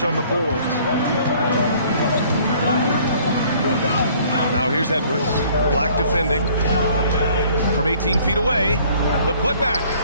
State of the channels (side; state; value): both; inverted; correlation -0.57